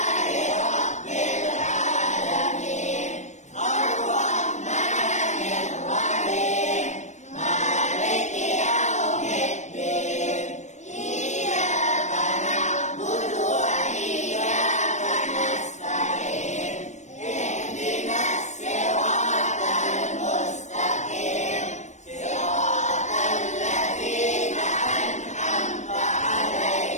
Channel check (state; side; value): late; right; 0.34 ms